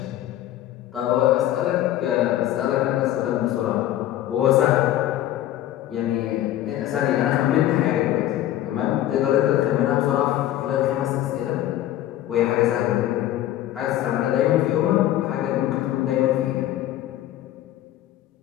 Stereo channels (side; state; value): right; quieter; 13.2 dB